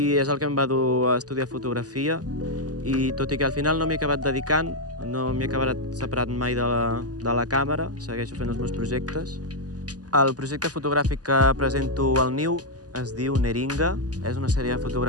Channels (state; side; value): late; left; 0.67 ms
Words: és el que em va dur a estudiar fotografia i tot i que al final no m'hi he acabat dedicant, no m'he acabat separat mai de la càmera, segueixo fent els meus projectes. El projecte fotogràfic que presento al Niu es diu Neringa. És una sèrie de